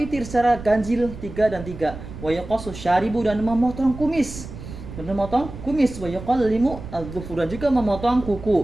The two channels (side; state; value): right; noise; rumble, 12 dB below the sound